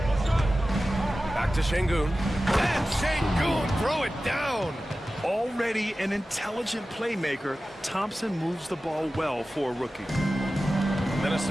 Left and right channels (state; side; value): normal; both; correlation 0.95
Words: Back to Şengün. And Şengün throw it down. Already an intelligent playmaker, Thompson moves the ball well for a rookie.